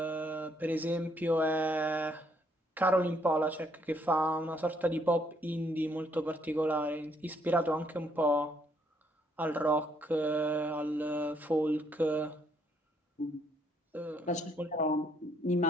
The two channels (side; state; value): both; normal; correlation 0.69